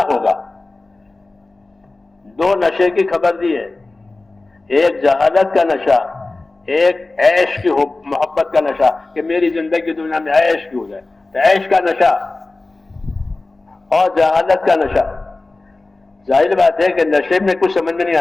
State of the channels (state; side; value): quieter; right; 3.2 dB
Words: ہوگا۔ دو نشے کی خبر دی ہے، ایک جہالت کا نشہ، ایک عیش کی محبت کا نشہ، کہ میری زندگی دنیا میں عیش کی ہو جائے، تو عیش کا نشہ اور جہالت کا نشہ۔ ظاہر بات ہے کہ نشے میں کچھ سمجھ میں نہیں